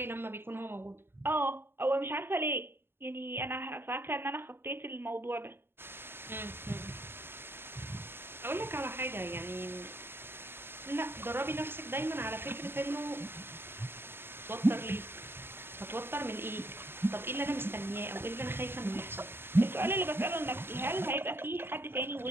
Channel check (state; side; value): late; left; 0.11 ms